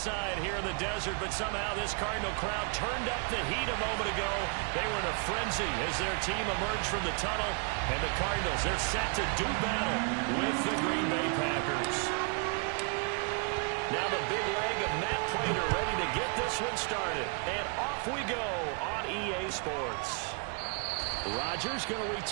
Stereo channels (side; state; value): left; quieter; 36.6 dB